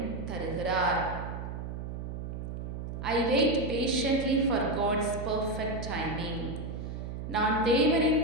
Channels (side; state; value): right; noise; hum, 6 dB below the sound